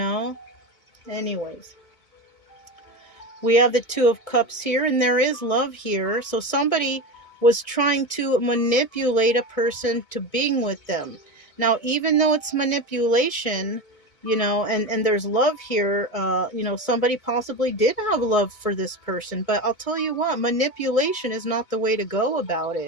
We have the Two of Cups here, and there is love here. So somebody was trying to manipulate a person to being with them. Now, even though it's manipulation, and there's love here, somebody possibly did have love for this person. But I'll tell you what, manipulation is not the way to go about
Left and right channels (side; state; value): right; late; 1.7 ms